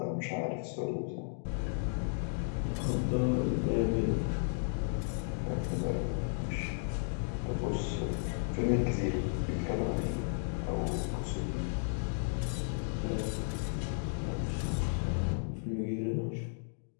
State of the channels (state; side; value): silent; right; digital silence